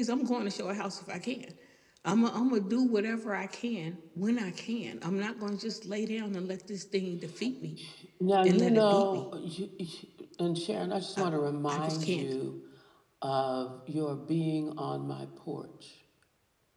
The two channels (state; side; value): identical; both; correlation 1.00